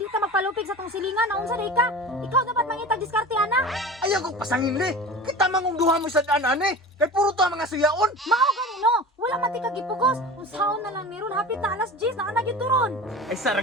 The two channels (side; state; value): both; normal; correlation 0.34